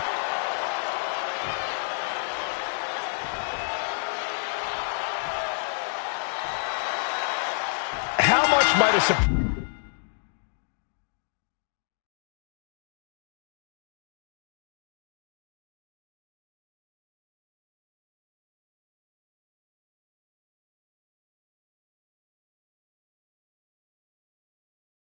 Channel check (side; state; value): right; silent; digital silence